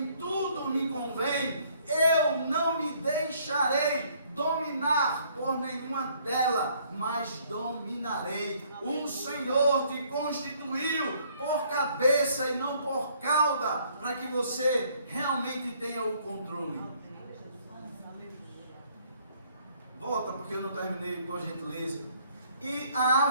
tudo me convém. Eu não me deixarei dominar por nenhuma delas, mas dominarei. O Senhor te constituiu por cabeça e não por cauda, para que você realmente tenha o controle. Volta, porque eu não terminei, por gentileza. e a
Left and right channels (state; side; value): inverted; both; correlation -0.63